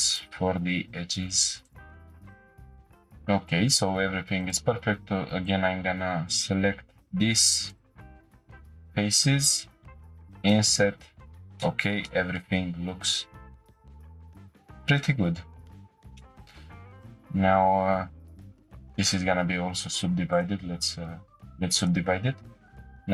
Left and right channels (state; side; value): identical; both; correlation 1.00